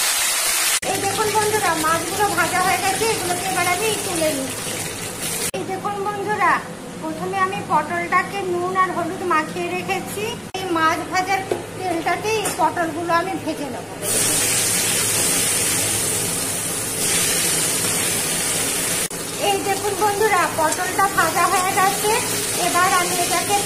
এই দেখুন বন্ধুরা, মাছগুলো ভাজা হয়ে গেছে। এগুলোকে এবার আমি তুলে নিচ্ছি। এই দেখুন বন্ধুরা, প্রথমে আমি পটলটাকে নুন আর হলুদ মাখিয়ে রেখেছি। এই মাছ ভাজার তেলটাতে এই পটলগুলো আমি ভেজে নেব। এই দেখুন বন্ধুরা, পটলটা ভাজা হয়ে গেছে। এবার আমি এটাকে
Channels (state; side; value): identical; both; correlation 1.00